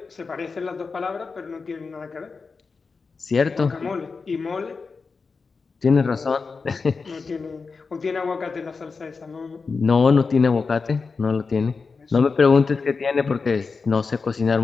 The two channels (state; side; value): quieter; right; 4.7 dB